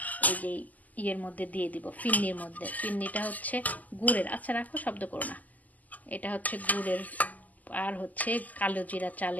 এই যে ইয়ের মধ্যে দিয়ে দিব, ফিন্নির মধ্যে। ফিন্নিটা হচ্ছে গুড়ের, আচ্ছা রাখো শব্দ করো না, এটা হচ্ছে গুড়ের আর হচ্ছে কালো জিরা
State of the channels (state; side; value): late; right; 0.080 ms